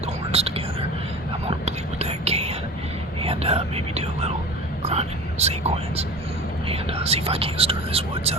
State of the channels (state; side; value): normal; both; correlation 0.36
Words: the horns together. I'm gonna bleed with that can, and maybe do a little grunting sequence, and see if I can't stir this woods